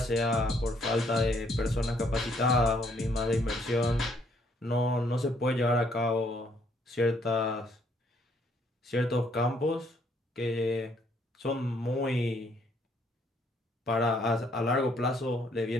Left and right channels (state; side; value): normal; both; correlation 0.68